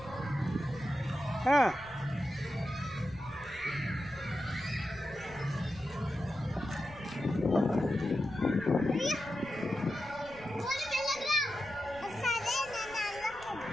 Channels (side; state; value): left; noise; rumble, 20 dB below the sound